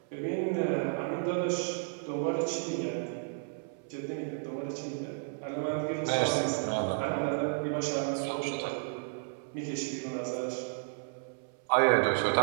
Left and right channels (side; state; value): left; silent; 56 dB below the other